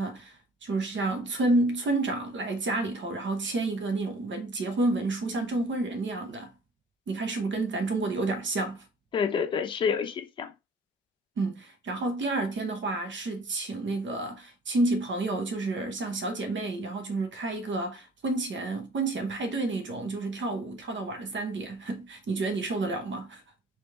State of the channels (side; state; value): both; normal; correlation 0.51